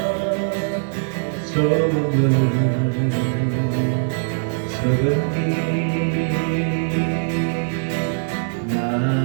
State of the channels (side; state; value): left; silent; digital silence